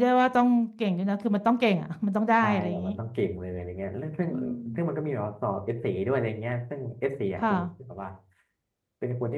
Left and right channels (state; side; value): identical; both; correlation 1.00